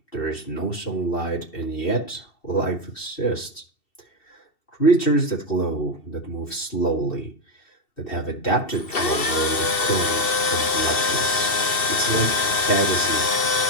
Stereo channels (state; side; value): late; right; 2.7 ms